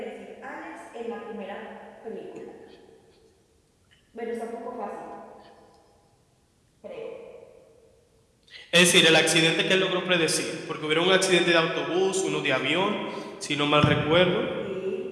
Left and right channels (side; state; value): both; identical; correlation 1.00